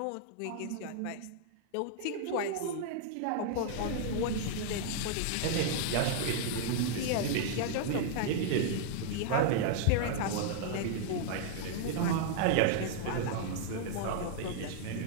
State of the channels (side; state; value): both; different; correlation 0.00